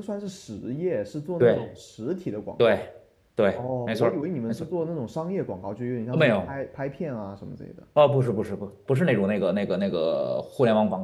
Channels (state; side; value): identical; both; correlation 1.00